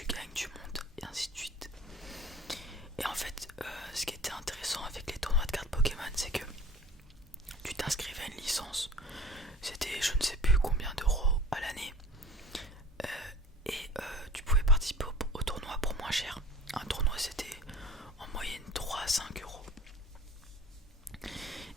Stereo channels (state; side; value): normal; both; correlation 0.43